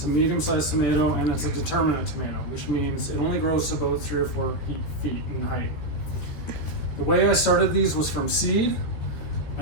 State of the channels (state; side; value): late; right; 14 ms